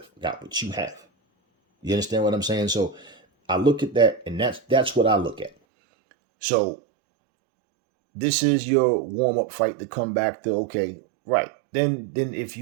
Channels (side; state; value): left; drops out; at 5.5 s